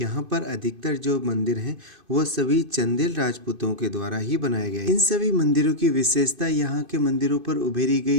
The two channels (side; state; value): left; late; 2.5 ms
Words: पर अधिकतर जो मंदिर हैं वो सभी चंदेल राजपूतों के द्वारा ही बनाए गए। इन सभी मंदिरों की विशेषता यहाँ के मंदिरों पर उभरी